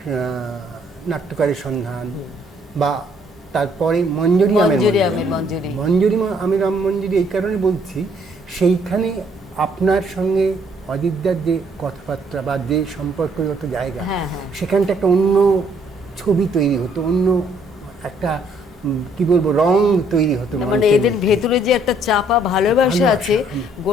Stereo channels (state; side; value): normal; both; correlation 0.66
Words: নাট্যকারের সন্ধান, বা তারপরে মঞ্জুরি আমির মঞ্জুরি এই কারণে বলছি, সেইখানে আপনার সঙ্গে অজিতদার যে কথাবার্তা বা যে সম্পর্কগত জায়গা, হ্যাঁ, হ্যাঁ। সেখানটা একটা অন্য ছবি তৈরি হতো, অন্য একটা কি বলবো রং তৈরি হতো মানে মঞ্চের এদের মধ্যে। ভেতরে যে একটা চাপা ভালোবাসা ভালোবাসা, আছে,